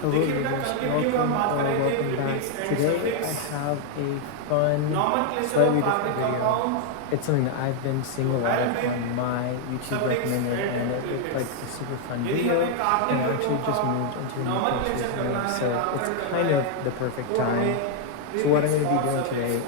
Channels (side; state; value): both; different; correlation 0.00